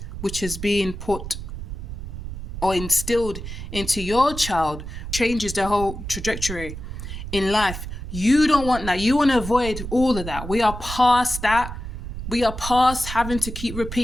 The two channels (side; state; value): right; noise; rumble, 8 dB below the sound